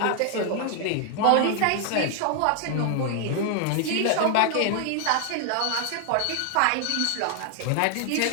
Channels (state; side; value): different; both; correlation 0.00